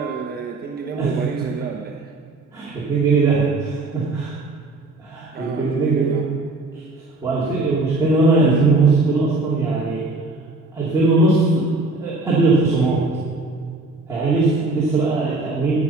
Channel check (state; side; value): quieter; left; 3.1 dB